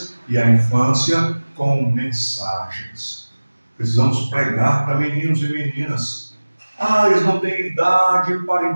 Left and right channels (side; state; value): both; inverted; correlation -1.00